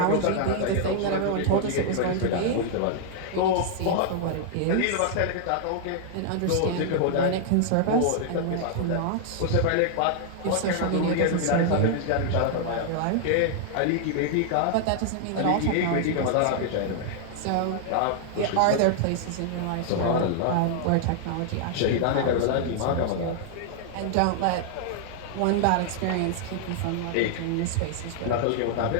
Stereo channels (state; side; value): different; both; correlation -0.01